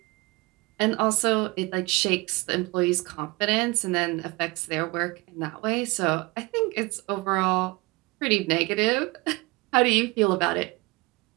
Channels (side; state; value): left; quieter; 24.5 dB